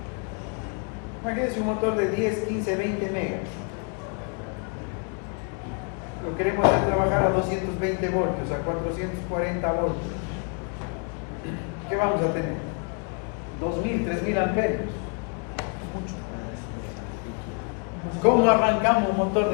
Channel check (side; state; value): right; quieter; 39.3 dB